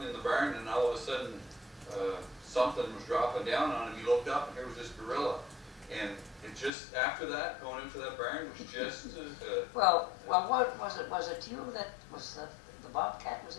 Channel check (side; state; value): right; drops out; at 6.7 s